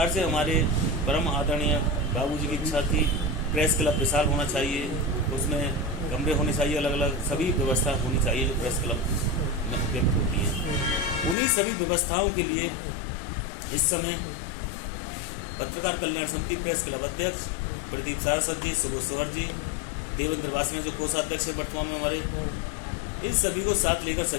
से हमारे परम आदरणीय बाबूजी की इच्छा थी, प्रेस क्लब विशाल होना चाहिए, उसमें कमरे होने चाहिए, अलग अलग सभी व्यवस्था होनी चाहिए जो प्रेस क्लब में उपयुक्त होती है। उन्हीं सभी व्यवस्थाओं के लिए इस समय पत्रकार कल्याण समिति प्रेस क्लब अध्यक्ष प्रदीप सारस्वत जी, सुबोध सोहर जी, देवेंद्र वासने जो कोषाध्यक्ष है वर्तमान में हमारे, इन सभी को साथ लेकर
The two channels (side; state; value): right; drops out; at 11.4 s